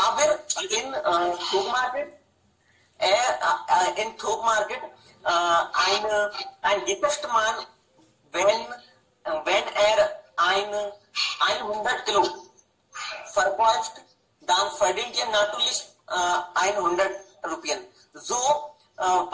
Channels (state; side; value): identical; both; correlation 1.00